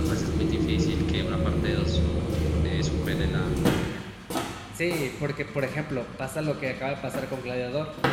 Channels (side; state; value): both; identical; correlation 1.00